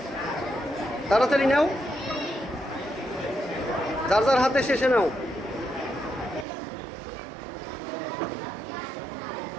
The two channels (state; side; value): drops out; left; at 6.5 s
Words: তাড়াতাড়ি নাও, যার যার হাতে শেষে নাও।